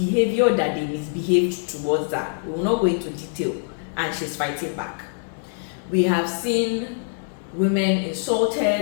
that they misbehaved towards her. We will not go into detail, and she's fighting back. We have seen women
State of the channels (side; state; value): right; silent; digital silence